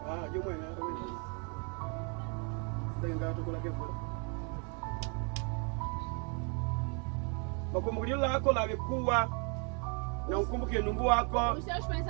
Jumwe na wewe. Ndenga tukula kefu. Makumbukio lako lavikuwa na ukumbuke nungu wako. Os seus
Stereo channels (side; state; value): left; quieter; 37.0 dB